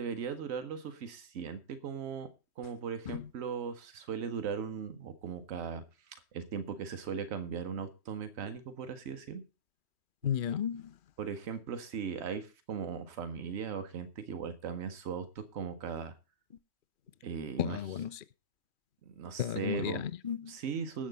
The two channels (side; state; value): left; late; 3.1 ms